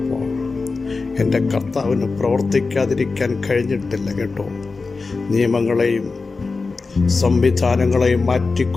എൻ്റെ കർത്താവിന് പ്രവർത്തിക്കാതിരിക്കാൻ കഴിഞ്ഞിട്ടില്ല കേട്ടോ. നിയമങ്ങളെയും സംവിധാനങ്ങളെയും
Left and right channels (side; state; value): right; quieter; 4.1 dB